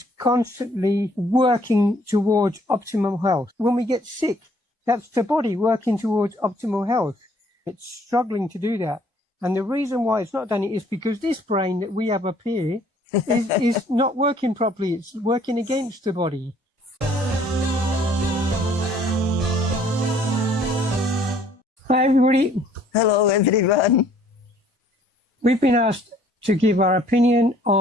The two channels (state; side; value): normal; both; correlation 0.60